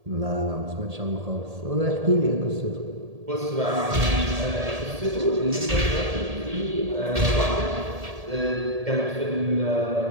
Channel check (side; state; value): left; late; 1.8 ms